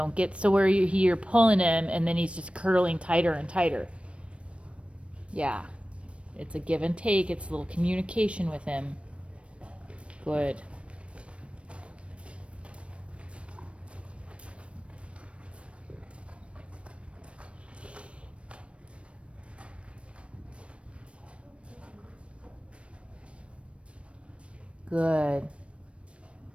get so where you're pulling him and then he's just curling tighter and tighter. Yeah, it's a give and take. It's a little communication with him. Good. Good.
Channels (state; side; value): late; left; 0.061 ms